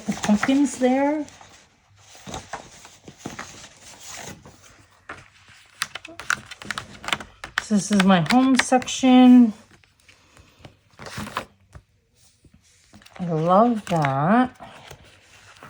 the pumpkins there. So this is my home section. I love that.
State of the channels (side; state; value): both; identical; correlation 1.00